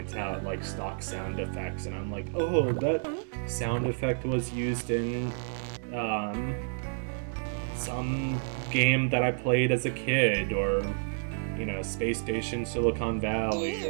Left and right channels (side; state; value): left; silent; digital silence